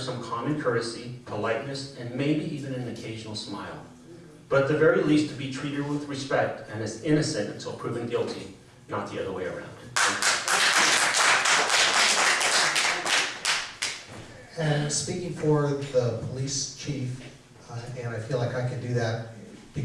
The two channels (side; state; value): both; identical; correlation 1.00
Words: common courtesy, politeness, and maybe even an occasional smile. But at the very least, to be treated with respect and as innocent until proven guilty, not the other way around. And speaking for the police chief, and I feel like I can do that